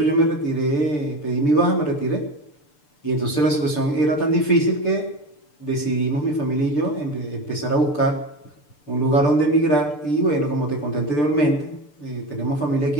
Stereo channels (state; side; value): late; right; 6.8 ms